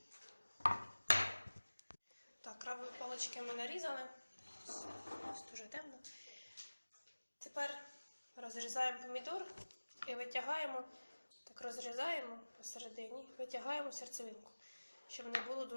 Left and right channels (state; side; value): inverted; both; correlation -1.00